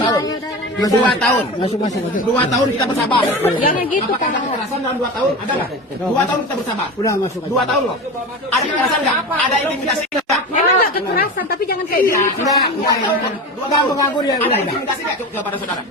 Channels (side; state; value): both; normal; correlation 0.28